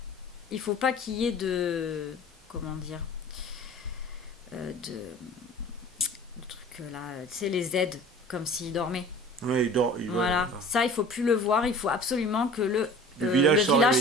Il faut pas qu'il y ait de... Comment dire le truc là, tu sais, les aides, comme s'il dormait. Oui, il dort. Voilà. Ça, il faut plus le voir. Il faut absolument que le village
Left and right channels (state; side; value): normal; both; correlation 0.44